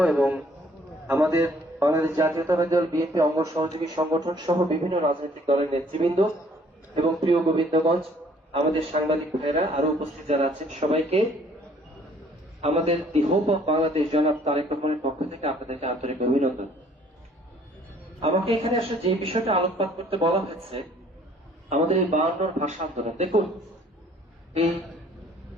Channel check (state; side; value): normal; both; correlation 0.59